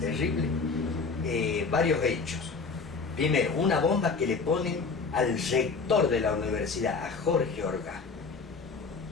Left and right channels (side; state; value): right; quieter; 4.6 dB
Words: varios hechos. Primero, una bomba que le ponen al rector de la universidad, a Jorge Orgaz.